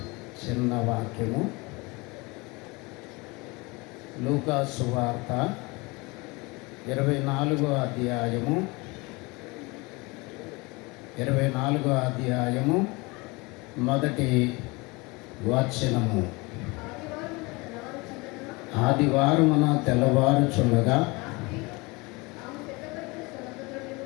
చిన్న వాక్యము లూకా సువార్త 24వ అధ్యాయము మొదటి వచనము. ఆదివారమున తెల్లవారుచుండగా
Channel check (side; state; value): right; quieter; 25.6 dB